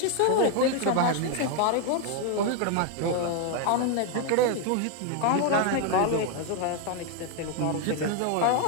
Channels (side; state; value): both; different; correlation 0.01